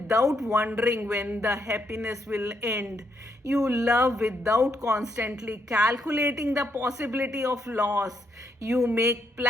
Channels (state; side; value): normal; both; correlation 0.77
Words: wondering when the happiness will end. You love without constantly calculating the possibility of loss. You make